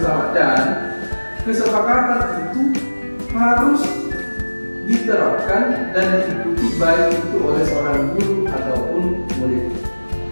dan kesepakatan itu harus diterapkan dan diikuti baik itu oleh seorang guru ataupun murid.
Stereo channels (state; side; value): inverted; both; correlation -1.00